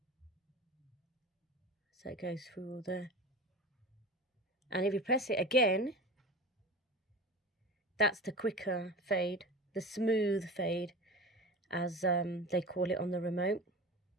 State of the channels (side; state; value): both; normal; correlation 0.32